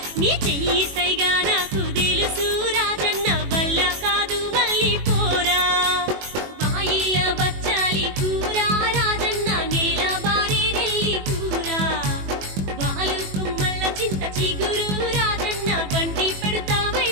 నీ చెయ్యి సైగా నాకు తెలుసు రాజన్న వల్ల కాదు మళ్ళీ పోరా బాయిల బచ్చాలి కూర రాజన్న నేల బారి నెల్లి కూర వాలు కుమ్మల్ల చింత చిగురు రాజన్న బండి పెడతా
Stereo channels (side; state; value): left; late; 21 ms